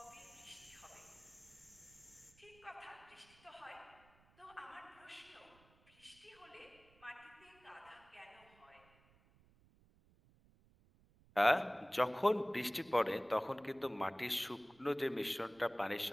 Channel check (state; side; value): noise; right; rumble, 29 dB below the sound